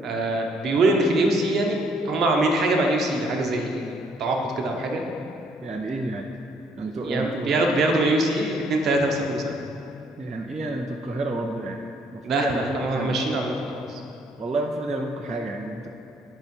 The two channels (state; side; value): normal; both; correlation 0.66